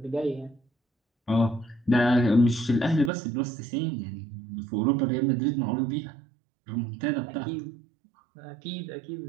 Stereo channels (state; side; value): drops out; left; at 3.1 s